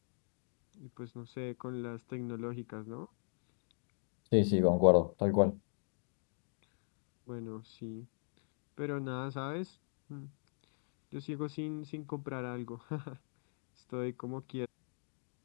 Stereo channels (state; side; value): silent; right; digital silence